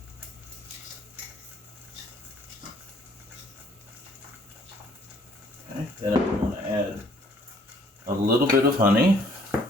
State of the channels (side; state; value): both; normal; correlation 0.61